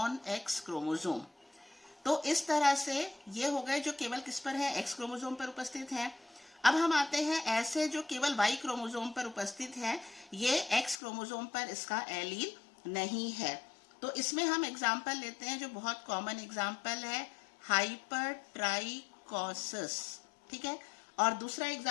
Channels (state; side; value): drops out; right; at 11.0 s